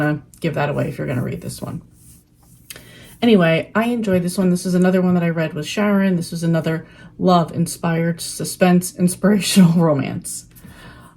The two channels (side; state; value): both; identical; correlation 1.00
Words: to give that away if you're going to read this one. Anyway, I enjoyed this one. This is another one that I read with Sharon. This was another love-inspired suspense, inspirational romance.